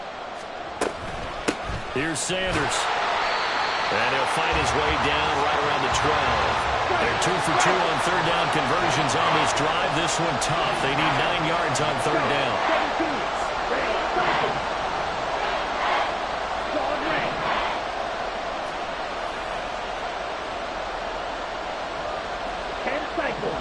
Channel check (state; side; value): identical; both; correlation 1.00